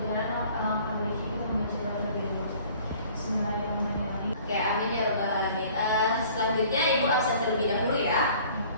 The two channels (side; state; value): both; inverted; correlation -0.52